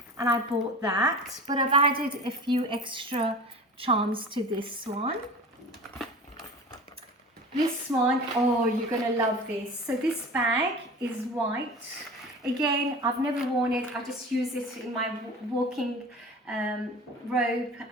and I bought that, but I've added a few extra charms to this one. This one, oh, you're gonna love this. So this bag is white. Again, I've never worn it. I just use it in my walking robe,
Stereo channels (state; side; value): normal; both; correlation 0.36